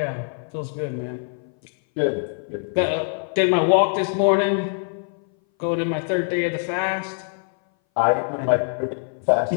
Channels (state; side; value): silent; right; 59 dB below the other